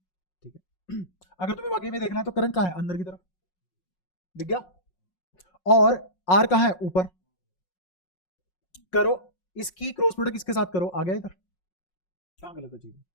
है। अगर तुम्हें वाकई में देखना है तो करंट कहाँ है? अंदर की तरफ, दिख गया। और आर कहाँ है? ऊपर। करो इसकी क्रॉस प्रोडक्ट इसके साथ करो, आ गया इधर। कहाँ गलत है चीज?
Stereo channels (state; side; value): late; right; 5.5 ms